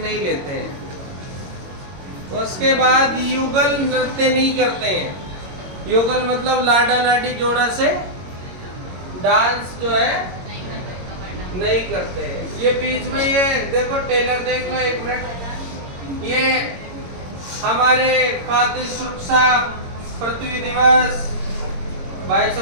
नहीं लेते हैं। उसके बाद युगल नृत्य नहीं करते हैं। युगल मतलब लाडा लाडी जोड़ा से डांस जो है नहीं करते हैं। ये बीच में ये देखो टेलर, देख लो एक मिनट, ये हमारे खाद्य सुरक्षा पृथ्वी दिवस भाई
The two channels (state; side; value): late; left; 22 ms